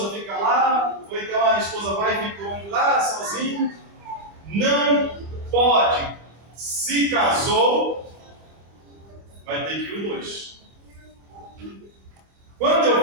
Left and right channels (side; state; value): left; late; 25 ms